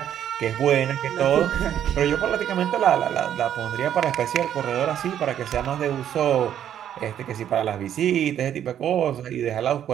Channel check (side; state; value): left; quieter; 10.1 dB